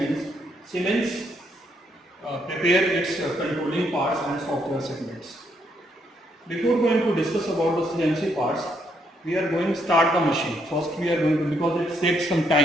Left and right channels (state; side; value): normal; both; correlation 0.74